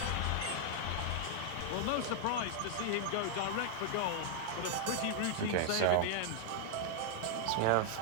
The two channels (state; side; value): different; both; correlation -0.01